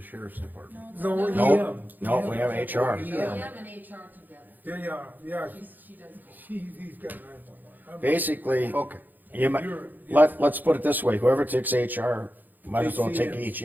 department. no, No, EM. no, we have HR. EM and HR together. Yeah, She does both. he's got 911. Basically, Okay. you might, You're- let's put it this way, whoever takes HR, might as well Takes take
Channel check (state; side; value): late; left; 0.086 ms